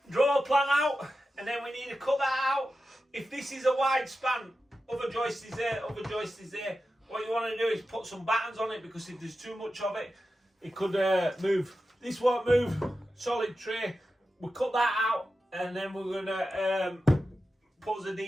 Draw a plan out, and then we need to cut that out. If this is a wide span, other joist is there, other joist is there. What you want to do is put some battens on it, because if there's too much of it, it could move. This won't move, solid tray. We'll cut that out, and then we're going to put the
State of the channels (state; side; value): normal; both; correlation 0.92